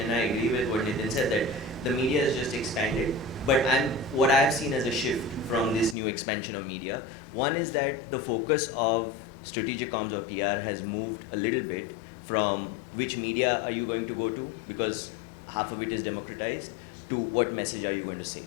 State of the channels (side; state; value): right; drops out; at 6.0 s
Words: and I agree with what Nitin said, that the media has just expanded. But what I have seen as a shift from this new expansion of media, one is that the focus of strategic comms of PR has moved a little bit from which media are you going to go to, because half of it is democratized, to what message are you going to say.